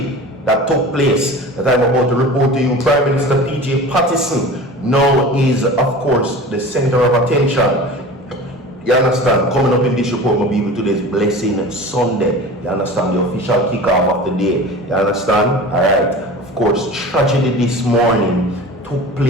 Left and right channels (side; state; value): both; normal; correlation 0.37